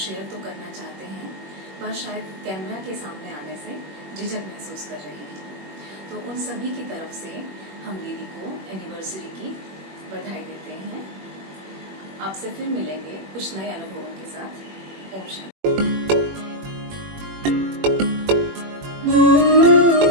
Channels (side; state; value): left; late; 21 ms